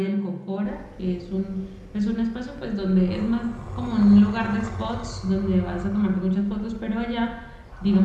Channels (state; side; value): identical; both; correlation 1.00